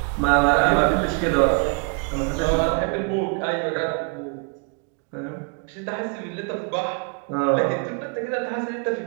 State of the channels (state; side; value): quieter; left; 36.0 dB